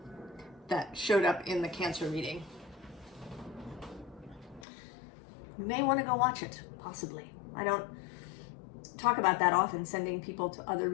that showed up in the Cancer reading. You may want to go watch it, possibly. I don't talk about that often, sending people to other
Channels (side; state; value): right; drops out; at 4.7 s